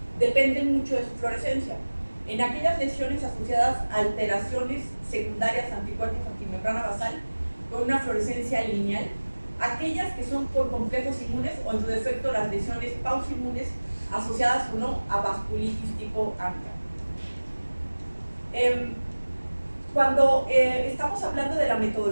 dependen mucho de su fluorescencia. En aquellas lesiones asociadas a alteraciones secundarias anticuerpos antimembrana basal con una fluorescencia lineal, aquellas que son por complejos inmunes o en su defecto las lesiones pausoinmunes asociadas o no a vasculitis tipo ANCA. Cuando estamos hablando de la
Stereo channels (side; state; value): both; inverted; correlation -1.00